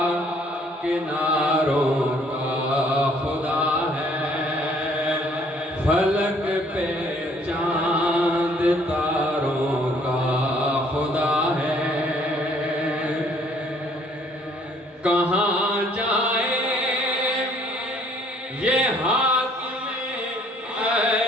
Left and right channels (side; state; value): both; normal; correlation 0.61